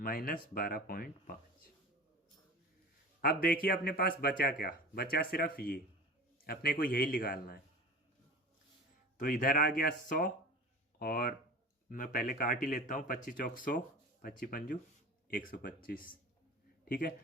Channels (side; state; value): both; normal; correlation 0.36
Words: 12.5। अब देखिए अपने पास बचा क्या, बचा सिर्फ ये, अपने को यही निकालना है। तो इधर आ गया 100 और मैं पहले काट ही लेता हूँ, 25 चौक 100, 25 पंजू 125। ठीक है,